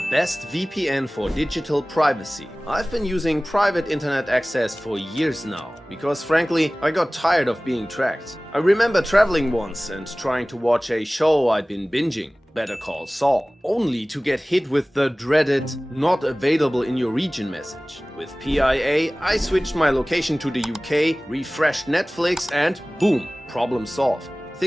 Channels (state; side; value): normal; both; correlation 0.98